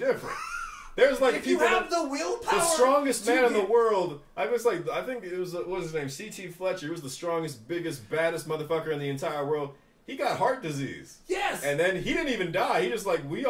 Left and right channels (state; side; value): identical; both; correlation 1.00